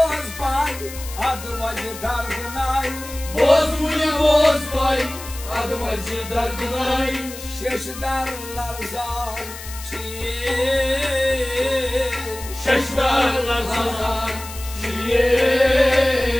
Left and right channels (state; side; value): noise; left; hiss, 13 dB below the sound